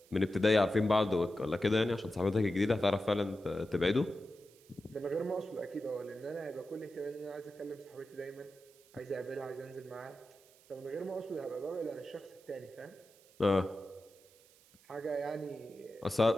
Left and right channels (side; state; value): right; noise; hiss, 27 dB below the sound